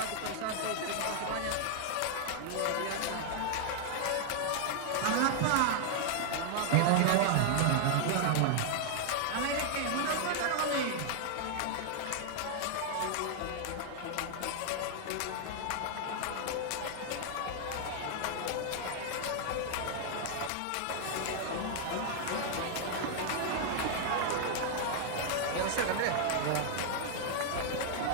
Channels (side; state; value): both; different; correlation 0.00